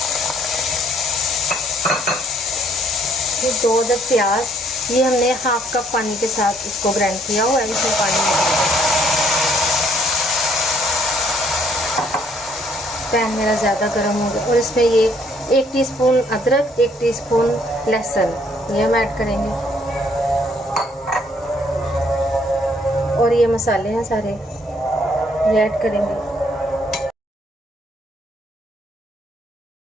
फिर 2 अदद प्याज, ये हमने हाफ कप पानी के साथ इसको ग्राइंड किया हुआ है। इसमें पानी पैन मेरा ज़्यादा गर्म हो गया और इसमें ये 1 टीस्पून अदरक, 1 टीस्पून लहसुन ये हम ऐड करेंगे। और ये मसाले हैं सारे ये ऐड करेंगे।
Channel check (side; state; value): both; normal; correlation 0.65